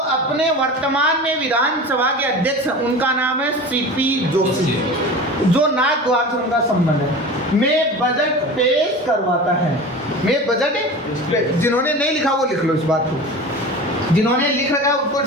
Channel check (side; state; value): both; normal; correlation 0.33